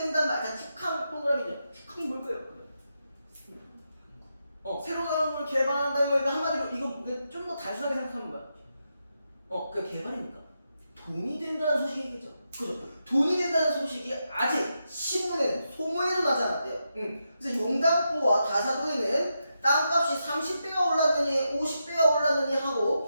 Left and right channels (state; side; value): inverted; both; correlation -0.86